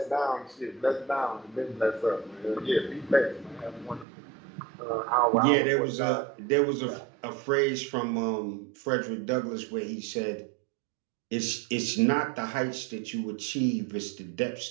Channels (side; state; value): left; drops out; at 4.0 s